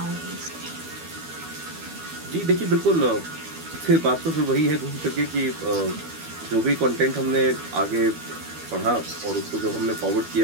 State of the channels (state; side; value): late; left; 12 ms